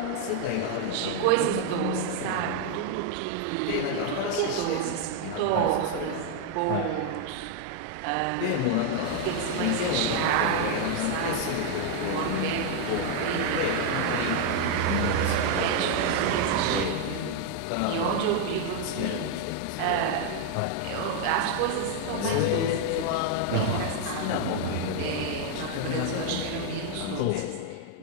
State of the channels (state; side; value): different; both; correlation 0.01